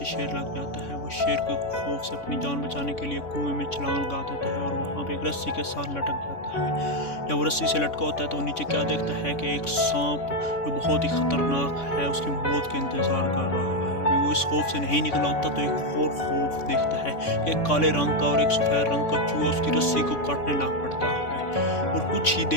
शेर लग जाता है। वो शेर के खौफ से अपनी जान बचाने के लिए कुएं में छलांग लगा देता है और वहाँ पे एक रस्सी के साथ लटक जाता है। जब वो रस्सी से लटका होता है तो वो नीचे क्या देखता है कि एक सांप जो बहुत ही ख़तरनाक है उसकी मौत का इंतज़ार कर रहा है। अभी वो इस खौफ से नहीं निकला होता तो एक और खौफ देखता है कि एक काले रंग का और एक सफ़ेद रंग का चूहा उसकी रस्सी को काटने लग पड़ता है। और कुछ ही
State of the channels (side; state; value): right; late; 3.6 ms